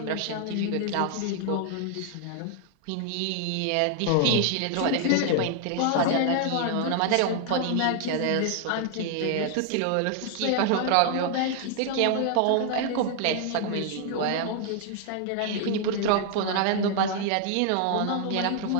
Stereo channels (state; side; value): different; both; correlation 0.00